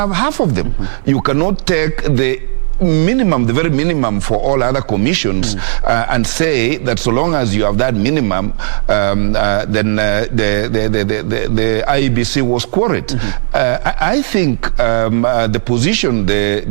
half of them. You cannot take the minimum, the very minimum for all other commissions, and say that so long as you have that minimum, then the IEBC was quorate. I think the position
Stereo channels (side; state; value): left; silent; 59 dB below the other